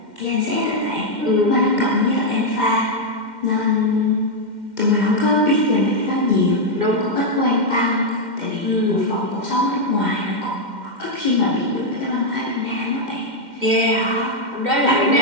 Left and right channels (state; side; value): late; left; 2.1 ms